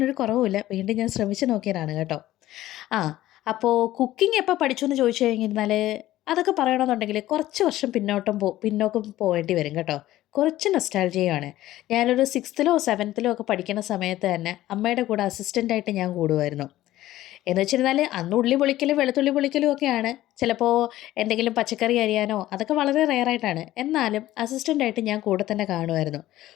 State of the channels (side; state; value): right; quieter; 15.0 dB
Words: കുറവുമില്ല, വീണ്ടും ഞാൻ ശ്രമിച്ചു നോക്കിയതാണ് കേട്ടോ. ആ അപ്പോൾ കുക്കിംഗ് എപ്പോൾ പഠിച്ചു എന്ന് ചോദിച്ചു കഴിഞ്ഞിരുന്നാൽ അതൊക്കെ പറയണമെന്നുണ്ടെങ്കിൽ കുറച്ച് വർഷം പിന്നോക്കം പോകേണ്ടി വരും കേട്ടോ. കുറച്ച് നൊസ്റ്റാൾജിയയാണ്. ഞാനൊരു സിക്സ്ത്തിലോ സെവൻത്തിലോ ഒക്കെ പഠിക്കുന്ന സമയത്ത് തന്നെ അമ്മയുടെ കൂടെ അസിസ്റ്റൻ്റായിട്ട് ഞാൻ കൂടുമായിരുന്നു. എന്ന് വെച്ചിരുന്നാൽ അന്ന് ഉള്ളി പൊളിക്കലും വെളുത്തുള്ളി പൊളിക്കലും ഒക്കെയാണ്. ചിലപ്പോൾ എന്തെങ്കിലും പച്ചക്കറി അരിയാനോ അതൊക്കെ വളരെ റെയറായിട്ടാണ്. എന്നാലും അസിസ്റ്റൻ്റായിട്ട് ഞാൻ കൂടെ തന്നെ കാണുമായിരുന്നു.